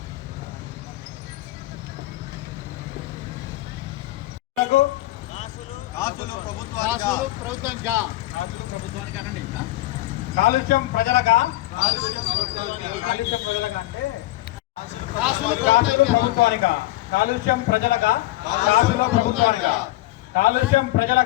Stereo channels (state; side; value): quieter; right; 17.2 dB